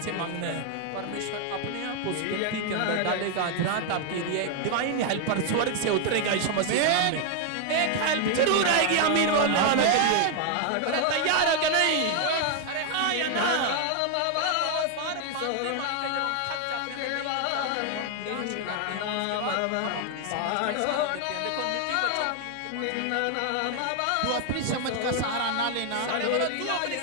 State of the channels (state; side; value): different; both; correlation 0.00